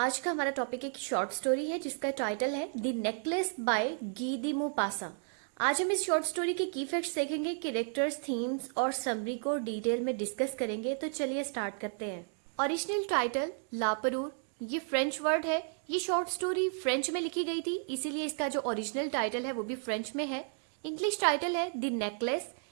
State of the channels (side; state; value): left; silent; 56 dB below the other